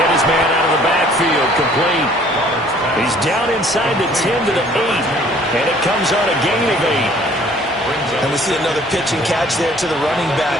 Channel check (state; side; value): normal; both; correlation 0.56